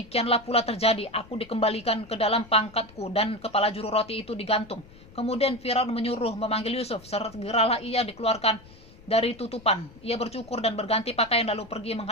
pula terjadi. Aku dikembalikan ke dalam pangkatku dan kepala juru roti itu digantung. Kemudian Firaun menyuruh memanggil Yusuf. Segeralah ia dikeluarkan dari tutupan. Ia bercukur dan berganti pakaian lalu pergi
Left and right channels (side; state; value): left; noise; rumble, 22 dB below the sound